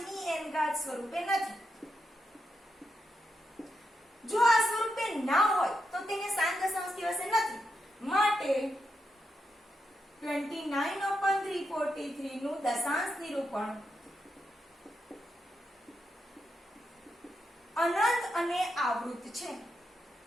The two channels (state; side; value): normal; both; correlation 0.85